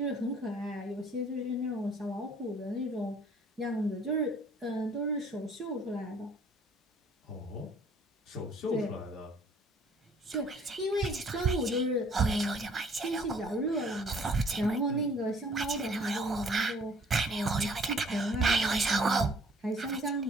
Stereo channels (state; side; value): normal; both; correlation 0.57